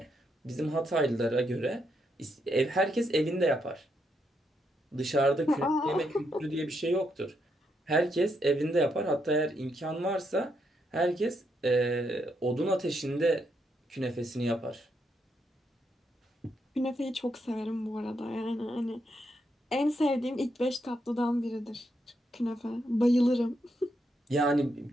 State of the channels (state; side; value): normal; both; correlation 0.79